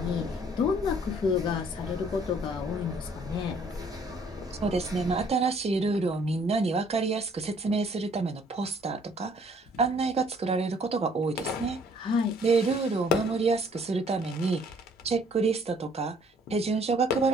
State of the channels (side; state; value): both; normal; correlation 0.60